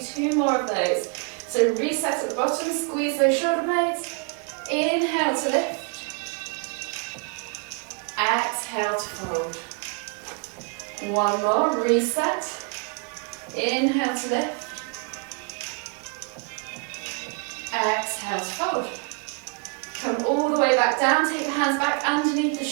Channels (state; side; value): quieter; left; 35.1 dB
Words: 2 more of those. So reset at the bottom, squeeze those shoulder blades. Inhale to lift. Exhale to fold. 1 more, reset. Inhale to lift. Exhale to fold. Come all the way back down, take the hands back underneath the